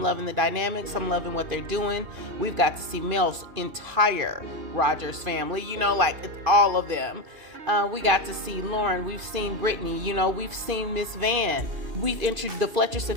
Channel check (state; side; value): late; left; 2.5 ms